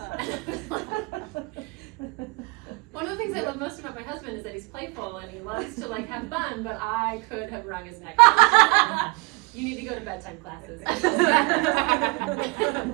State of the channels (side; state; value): left; quieter; 28.6 dB